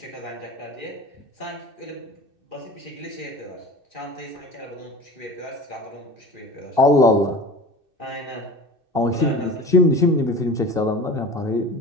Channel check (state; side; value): late; left; 2.6 ms